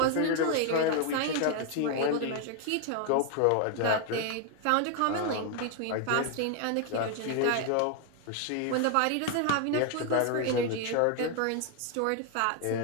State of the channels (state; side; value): different; both; correlation 0.01